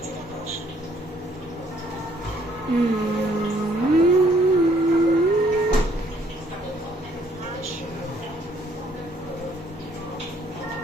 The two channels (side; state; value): both; normal; correlation 0.65